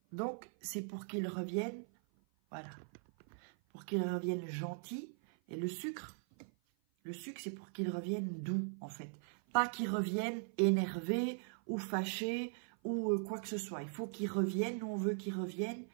donc, c'est pour qu'il revienne... Voilà, pour qu'il revienne gentil. Et le sucre, c'est pour qu'il revienne doux, en fait. Pas qu'il revienne énervé ou fâché ou quoi que ce soit. Il faut qu'il revienne, nous on veut qu'il revienne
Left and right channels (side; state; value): left; silent; 51 dB below the other